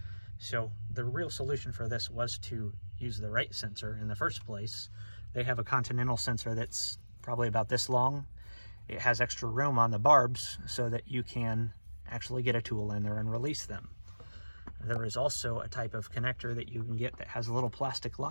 So the real solution for this was to use the right sensor in the first place. They have a Continental sensor that's probably about this long. It has extra room on the barbs so that you can actually get a tool in there and release them. There is also a type of connector that you can get that has a little plastic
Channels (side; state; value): both; inverted; correlation -1.00